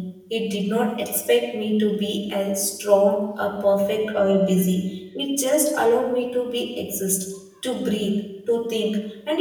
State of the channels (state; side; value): identical; both; correlation 1.00